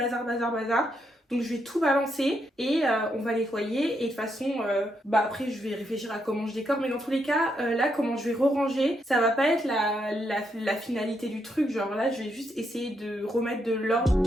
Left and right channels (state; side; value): normal; both; correlation 0.79